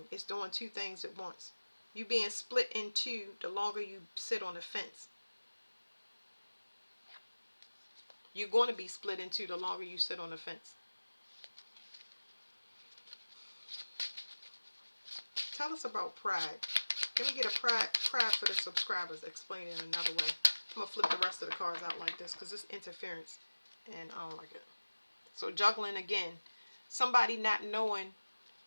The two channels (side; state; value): both; inverted; correlation -1.00